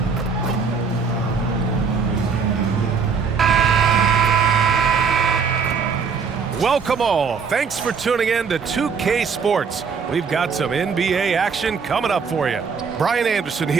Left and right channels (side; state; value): left; quieter; 5.7 dB